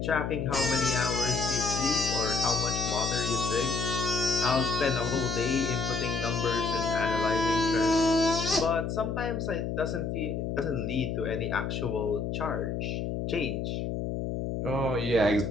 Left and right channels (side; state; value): left; noise; hum, 2 dB below the sound